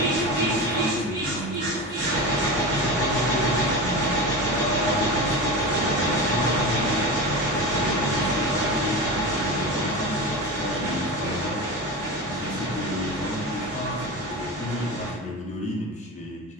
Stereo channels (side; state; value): both; normal; correlation 0.25